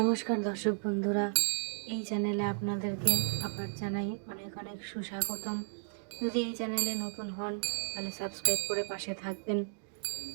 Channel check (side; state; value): left; silent; digital silence